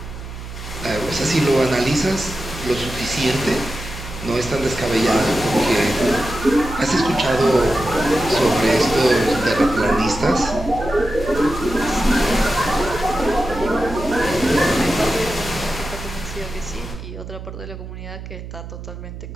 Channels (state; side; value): noise; right; hum, 11 dB below the sound